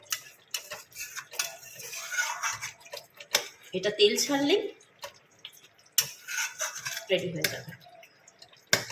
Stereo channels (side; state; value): both; identical; correlation 1.00